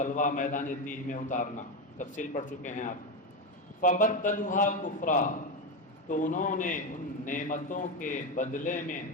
میدان تیہ میں اتارنا، تفصیل پڑھ چکے ہیں آپ۔ فَبَدَّلُوهَا كُفْرًا، تو انہوں نے ان نعمتوں کے بدلے میں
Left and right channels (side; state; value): both; normal; correlation 0.12